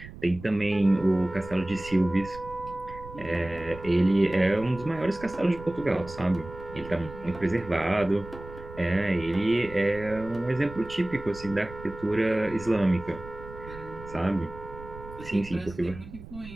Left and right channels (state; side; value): noise; right; rumble, 15 dB below the sound